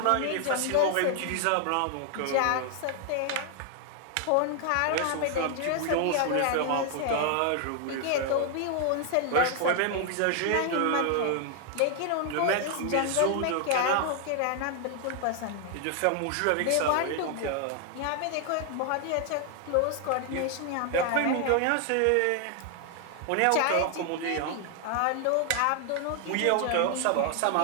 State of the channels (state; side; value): different; both; correlation 0.00